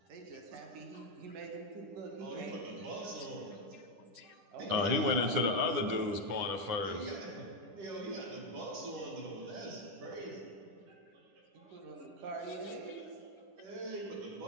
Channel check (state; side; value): late; left; 10 ms